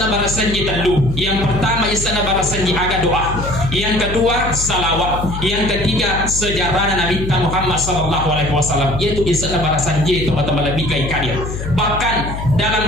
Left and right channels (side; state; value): left; noise; hum, 6 dB below the sound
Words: barasanji telu. Yang pertama isana barasanji aga doa, yang kedua salawat, yang ketiga sejarah Nabi Muhammad sallallahu alaihi wasallam, yaitu isana barasanji teman-teman lebih kai kadir. Bahkan